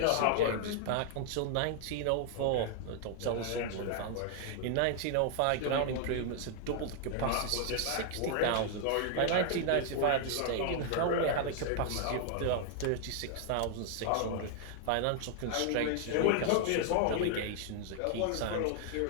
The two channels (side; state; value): both; different; correlation 0.00